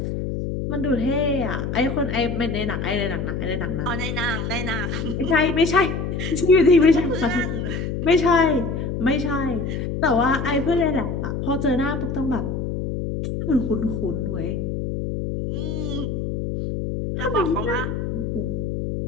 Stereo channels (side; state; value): left; noise; hum, 3 dB below the sound